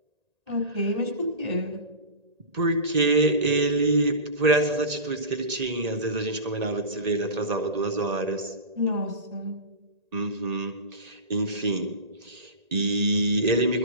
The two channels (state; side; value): late; left; 1.8 ms